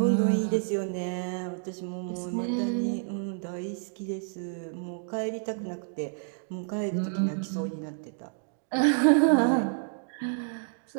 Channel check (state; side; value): silent; left; digital silence